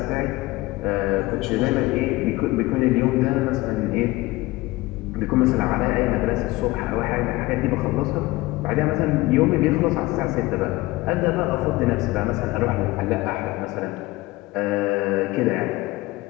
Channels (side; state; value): right; quieter; 20.0 dB